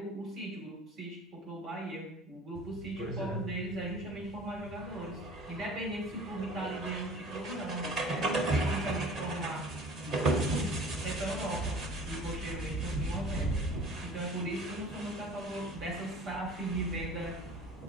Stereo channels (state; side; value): normal; both; correlation 0.45